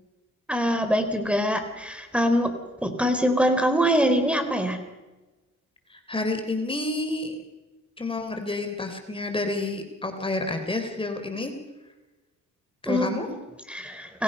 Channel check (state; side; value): normal; both; correlation 0.64